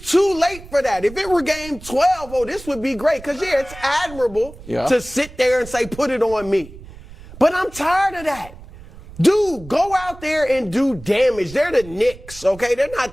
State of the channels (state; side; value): noise; right; rumble, 17 dB below the sound